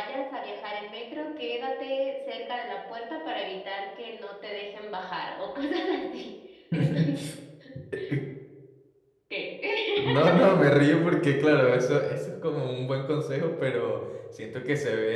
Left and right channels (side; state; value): both; identical; correlation 1.00